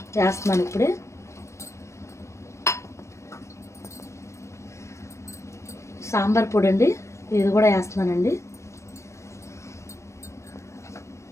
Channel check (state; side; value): late; right; 0.14 ms